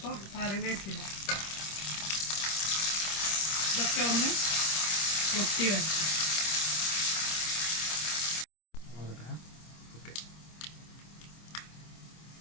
കറിവേപ്പില. ഇതൊക്കെ ഒന്ന് പൊട്ടി വെച്ചു.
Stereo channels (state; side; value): late; right; 25 ms